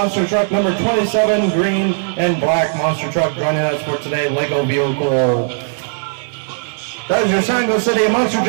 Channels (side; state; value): left; silent; 62 dB below the other